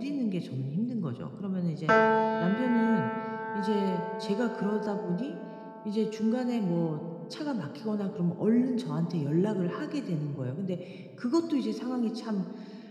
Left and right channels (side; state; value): both; identical; correlation 1.00